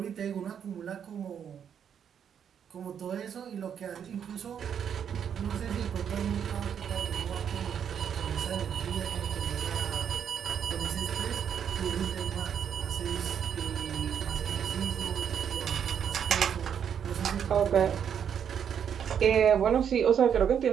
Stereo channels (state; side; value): quieter; left; 8.2 dB